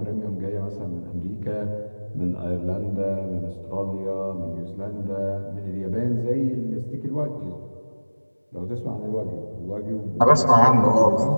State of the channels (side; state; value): both; inverted; correlation -1.00